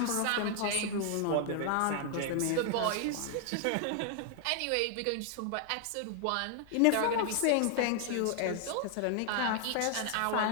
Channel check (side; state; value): both; different; correlation 0.00